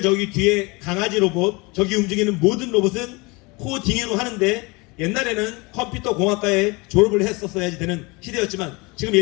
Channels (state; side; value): quieter; right; 26.2 dB